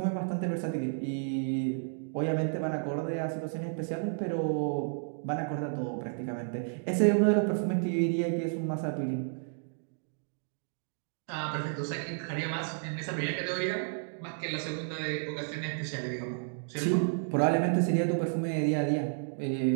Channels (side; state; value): left; silent; digital silence